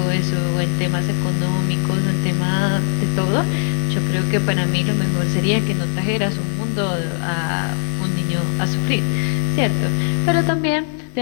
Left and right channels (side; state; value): right; silent; digital silence